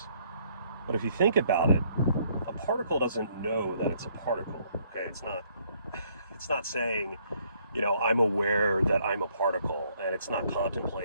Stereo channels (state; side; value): inverted; both; correlation -0.67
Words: But if you think about it, a particle doesn't know that it's a particle. Okay, it's not saying, I'm aware that I'm a particle, and it's not